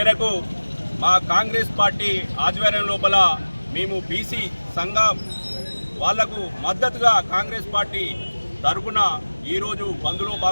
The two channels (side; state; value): both; inverted; correlation -1.00